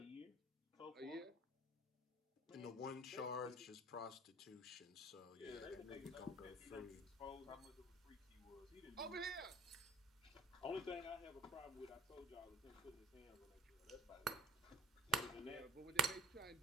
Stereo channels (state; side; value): normal; both; correlation 0.48